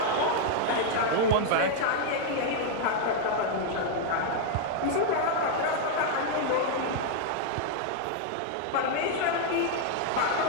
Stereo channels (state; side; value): different; both; correlation 0.00